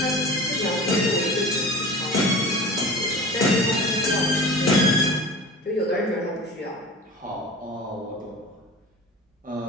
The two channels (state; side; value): normal; both; correlation 0.37